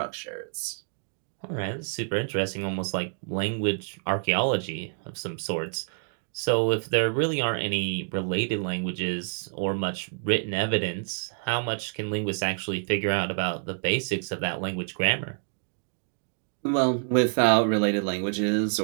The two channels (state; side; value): silent; left; digital silence